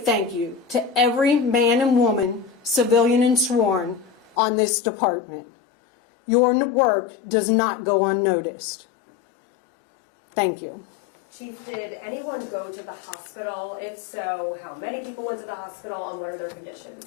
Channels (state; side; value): drops out; right; at 4.4 s